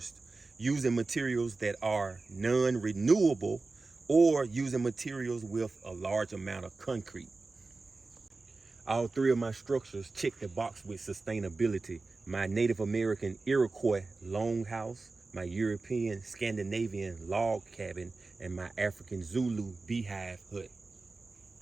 using materials that are non-renewable, or using materials with a large amount of concrete. All 3 of my structures check the box with sustainability. My Native American Iroquois longhouse, my European Scandinavian log cabin, and my African Zulu beehive hut.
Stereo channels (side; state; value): left; quieter; 3.7 dB